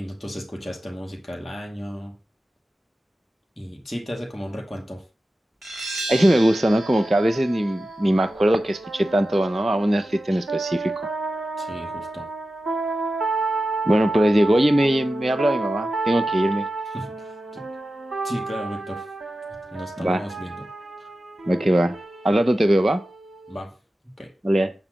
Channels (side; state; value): both; normal; correlation 0.93